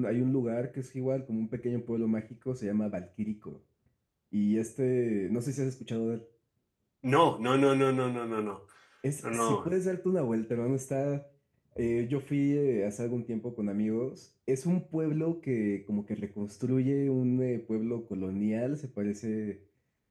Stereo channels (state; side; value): identical; both; correlation 1.00